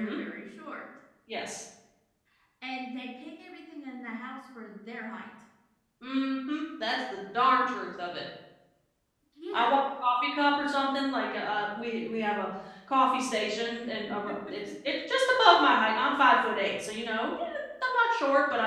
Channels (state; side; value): identical; both; correlation 1.00